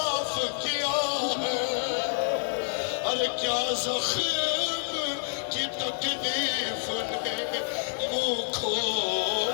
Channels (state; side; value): silent; right; digital silence